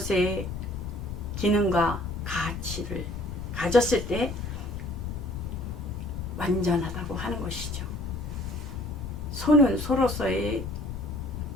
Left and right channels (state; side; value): noise; left; rumble, 7 dB below the sound